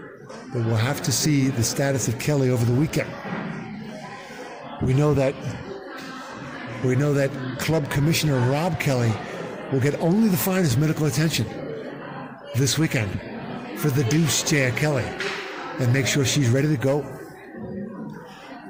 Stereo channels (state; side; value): identical; both; correlation 1.00